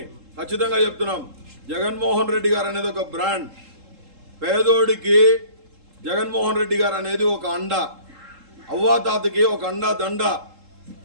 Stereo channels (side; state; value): left; late; 3.7 ms